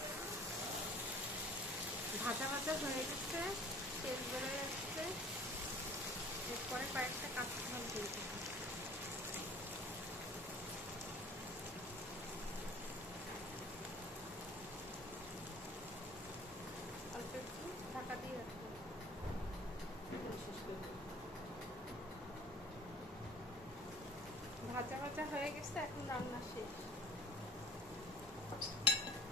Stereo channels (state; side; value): normal; both; correlation 0.47